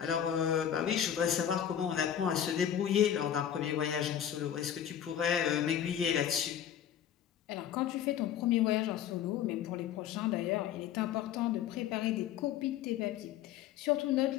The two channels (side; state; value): right; quieter; 9.8 dB